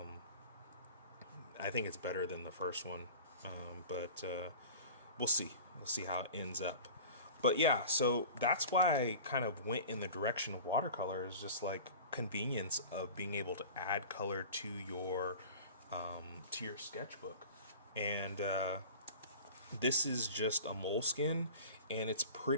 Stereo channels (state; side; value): inverted; both; correlation -0.39